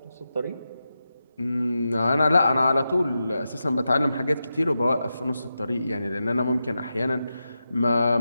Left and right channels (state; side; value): inverted; both; correlation -0.90